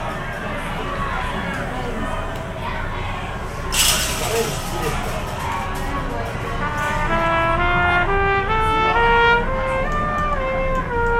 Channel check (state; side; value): identical; both; correlation 1.00